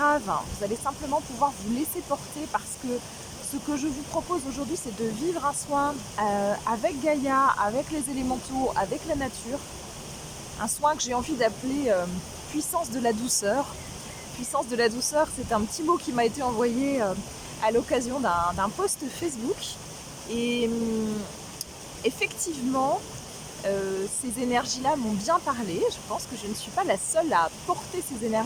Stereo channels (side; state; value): both; identical; correlation 1.00